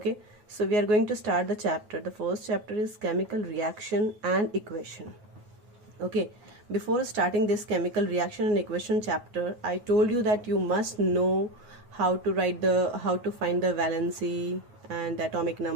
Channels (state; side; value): late; left; 9.3 ms